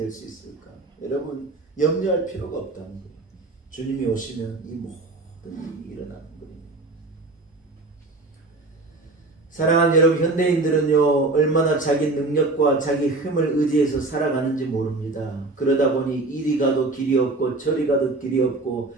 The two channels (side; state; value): left; quieter; 3.2 dB